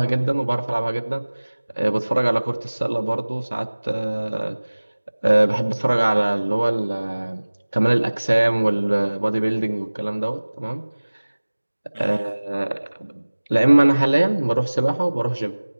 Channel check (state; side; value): inverted; both; correlation -1.00